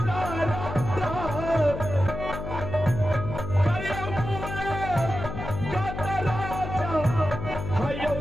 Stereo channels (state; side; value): noise; left; hum, 7 dB below the sound